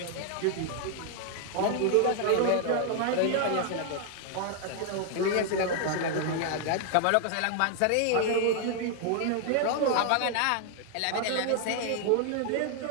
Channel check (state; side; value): different; both; correlation 0.00